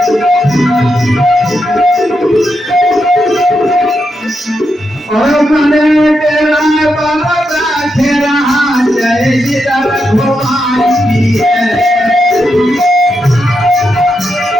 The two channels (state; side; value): normal; both; correlation 0.84